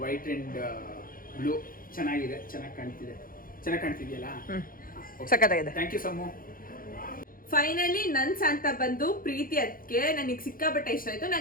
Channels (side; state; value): right; late; 0.41 ms